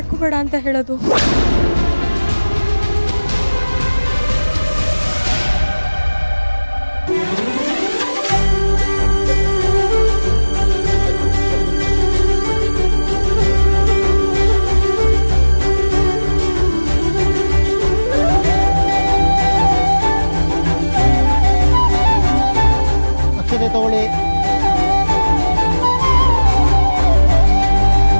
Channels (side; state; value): both; inverted; correlation -1.00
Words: ಅಂತ ಹೇಳೋದು? ಅಕ್ಷತೆ ತಗೊಳ್ಳಿ.